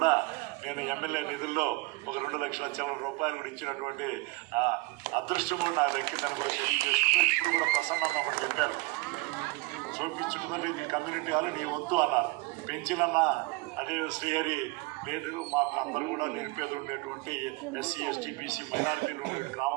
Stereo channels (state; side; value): quieter; left; 23.1 dB